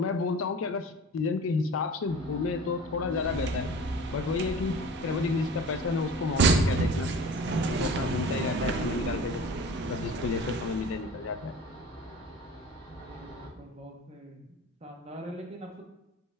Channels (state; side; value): normal; both; correlation 0.40